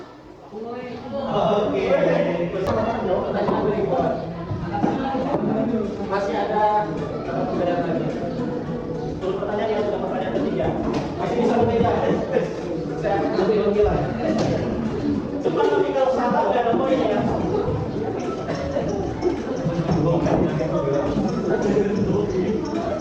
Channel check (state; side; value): identical; both; correlation 1.00